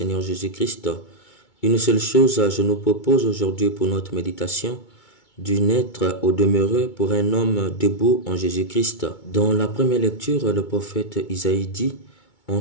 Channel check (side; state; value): right; late; 2.2 ms